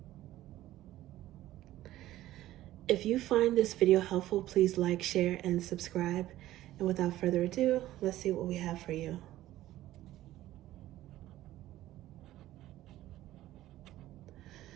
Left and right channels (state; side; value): quieter; left; 14.8 dB